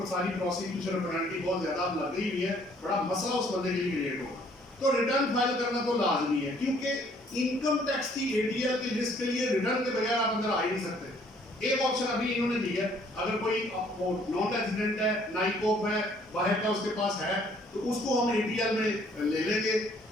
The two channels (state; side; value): normal; both; correlation 0.62